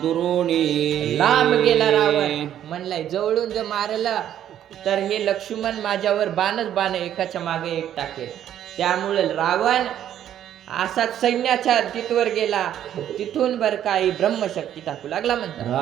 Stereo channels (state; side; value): quieter; left; 10.8 dB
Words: दुरोणी. लांब गेला रावण, म्हणलाय जवळून जर मारला तर हे लक्ष्मण माझ्यावर बाण एकाच्या मागे एक टाकेल. त्यामुळे रावण असाच सैन्याच्या तिथवर गेला, तिथून बर काही ब्रह्मशक्ती टाकू लागला म्हणतात.